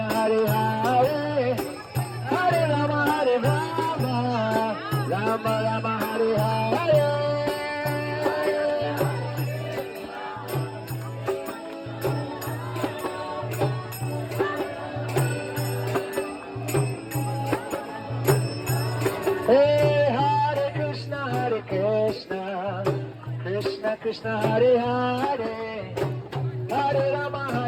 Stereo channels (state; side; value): identical; both; correlation 1.00